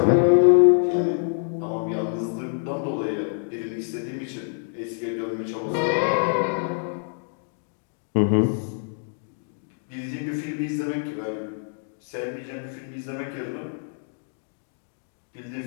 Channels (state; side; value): silent; right; digital silence